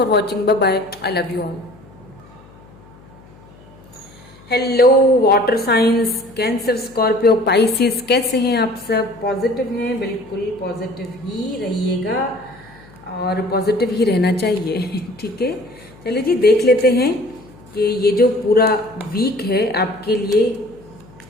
watching, bye bye, I love you all. Hello water signs, Cancer, Scorpio, Pisces, कैसे हैं आप सब? पॉजिटिव हैं? बिल्कुल पॉजिटिव ही रहिएगा और पॉजिटिव ही रहना चाहिए, ठीक है। चलिए जी, देख लेते हैं कि ये जो पूरा वीक है आपके लिए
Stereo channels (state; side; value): noise; left; hum, 24 dB below the sound